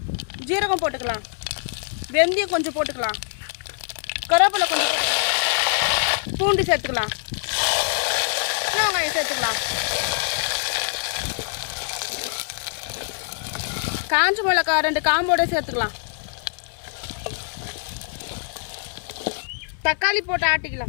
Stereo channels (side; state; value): right; silent; 63 dB below the other